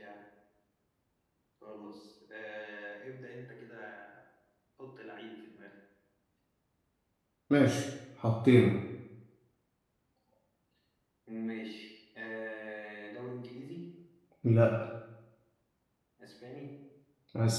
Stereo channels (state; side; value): identical; both; correlation 1.00